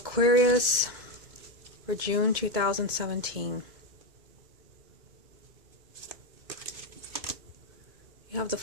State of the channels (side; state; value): left; late; 2.2 ms